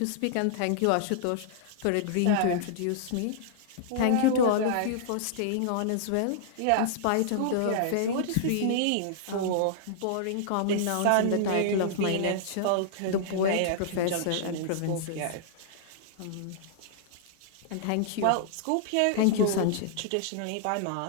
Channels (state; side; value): different; both; correlation -0.01